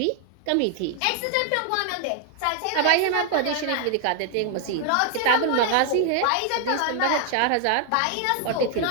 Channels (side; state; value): both; different; correlation 0.00